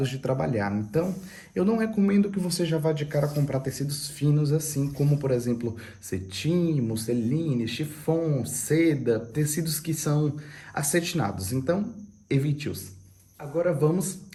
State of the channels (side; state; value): both; identical; correlation 1.00